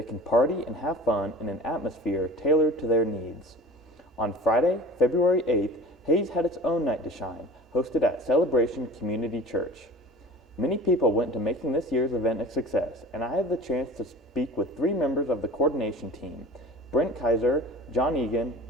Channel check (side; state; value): both; normal; correlation 0.39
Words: can party and have fun in an atmosphere tailored to their needs. On Friday, February 8th, Hayes had its own Night to Shine, hosted at Celebration Community Church. Many people went to making this year's event a success, and I had the chance to speak with 3 members of the coordination team, Brent Kaiser, John Egan,